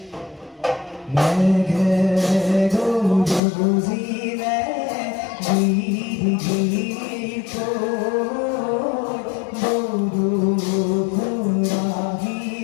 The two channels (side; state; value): right; drops out; at 3.4 s